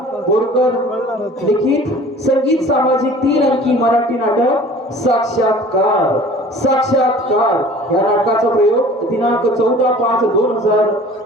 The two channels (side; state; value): both; normal; correlation 0.46